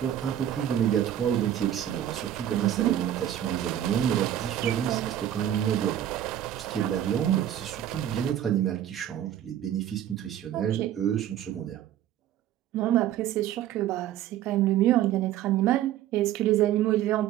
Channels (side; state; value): left; quieter; 11.4 dB